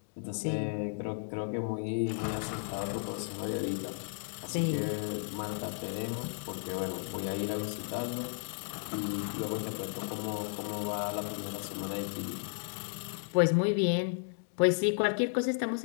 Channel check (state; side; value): silent; right; digital silence